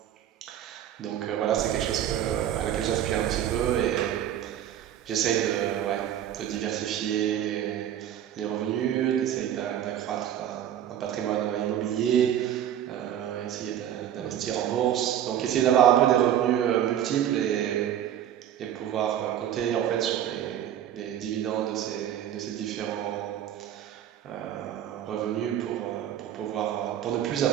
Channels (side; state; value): left; quieter; 10.6 dB